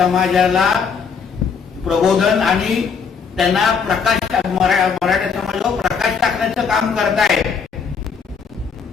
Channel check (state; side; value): quieter; right; 6.0 dB